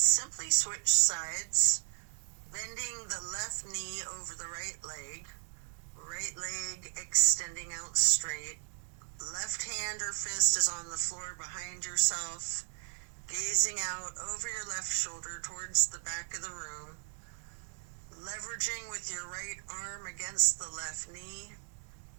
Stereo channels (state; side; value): silent; left; digital silence